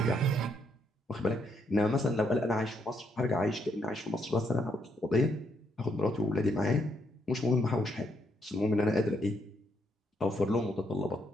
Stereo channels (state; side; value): normal; both; correlation 0.76